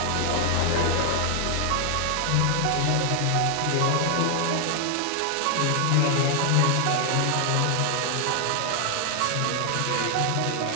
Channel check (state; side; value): different; both; correlation 0.00